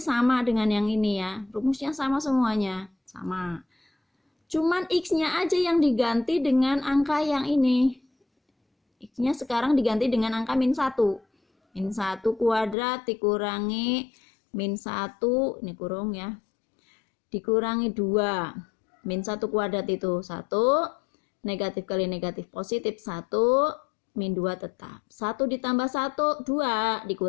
sama dengan yang ini ya. Rumusnya sama semuanya. Sama. Cuman X-nya aja yang diganti dengan angka yang ini. X-nya sekarang diganti dengan angka min 1. Min 1 kuadrat dikurangi min 1. Ini kurung ya. Dikurangi 2. Min 1 kuadrat itu 1. Negatif kali negatif positif 1. Min 2 tetap. 1 ditambah 1, 2.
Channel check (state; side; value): drops out; right; at 12.8 s